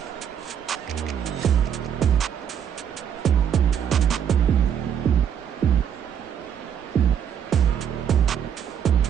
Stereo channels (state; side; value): quieter; left; 8.3 dB